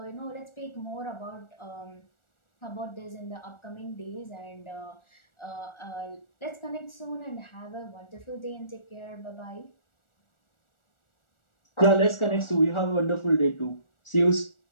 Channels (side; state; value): right; late; 1.4 ms